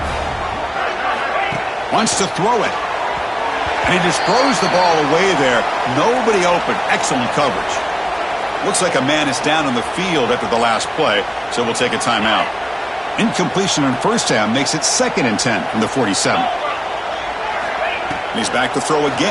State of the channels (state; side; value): identical; both; correlation 1.00